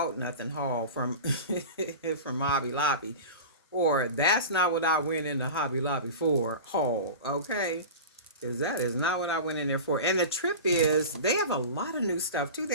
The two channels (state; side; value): inverted; both; correlation -0.31